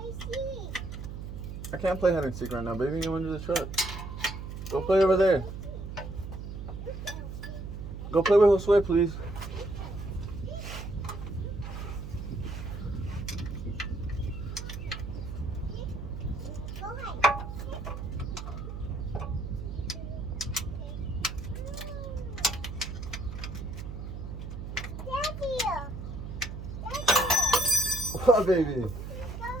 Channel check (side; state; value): right; noise; hum, 8 dB below the sound